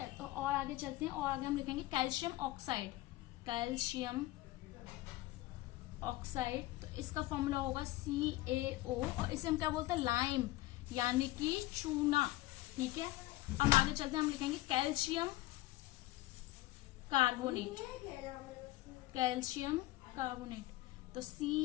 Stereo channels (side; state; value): right; quieter; 17.7 dB